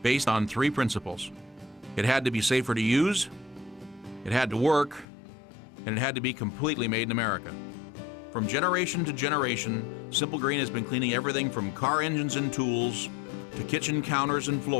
based on 3 principles. It had to be safer to use, it had to work, and it had to be completely made in America. From generation to generation, Simple Green has been cleaning everything from car engines and tools to kitchen counters and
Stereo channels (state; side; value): drops out; right; at 5.1 s